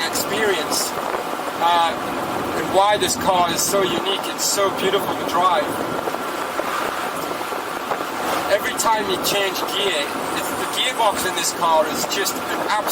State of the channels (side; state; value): both; identical; correlation 1.00